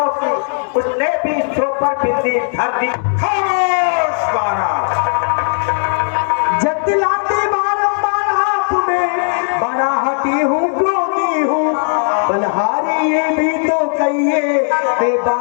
की, उसने भी सो पर बिंदी धर दी। जतलाते बारंबार आपने, बड़ा हटी हूँ क्रोधी हूँ, बलहारी ये भी तो कहिए मैं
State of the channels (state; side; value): silent; right; digital silence